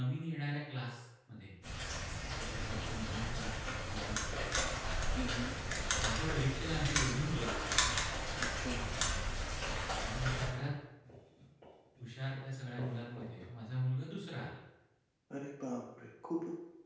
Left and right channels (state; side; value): identical; both; correlation 1.00